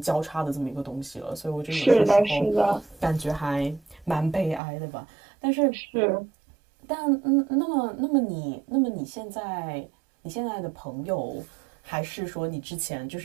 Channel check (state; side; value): drops out; left; at 4.6 s